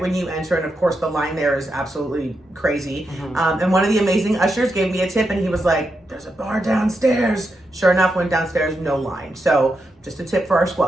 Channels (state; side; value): normal; both; correlation 0.85